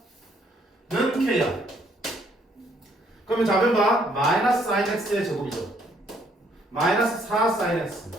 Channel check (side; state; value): both; normal; correlation 0.67